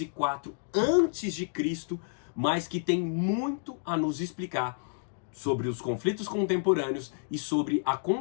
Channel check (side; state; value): right; silent; digital silence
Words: a.C., mas que tem muito a nos explicar sobre os conflitos contemporâneos e sobre a